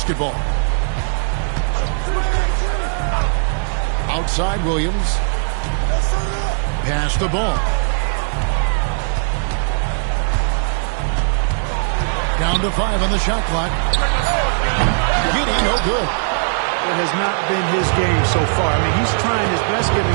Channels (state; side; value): silent; left; digital silence